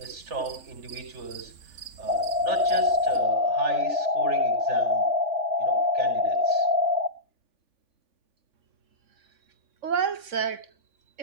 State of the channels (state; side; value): late; left; 3.7 ms